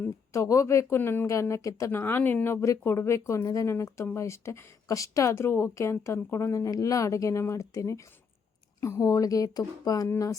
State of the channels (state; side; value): quieter; right; 5.9 dB